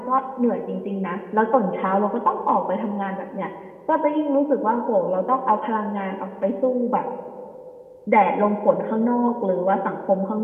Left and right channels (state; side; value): identical; both; correlation 1.00